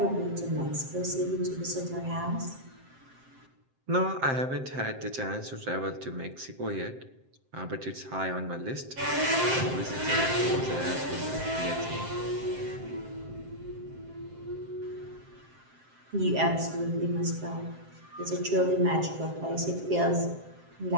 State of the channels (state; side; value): late; left; 7.6 ms